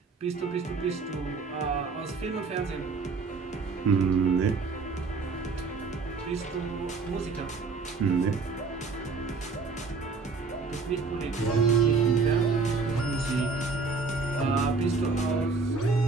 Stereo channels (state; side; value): quieter; left; 4.3 dB